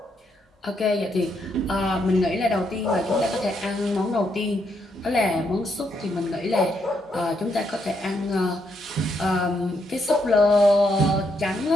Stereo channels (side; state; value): both; normal; correlation 0.77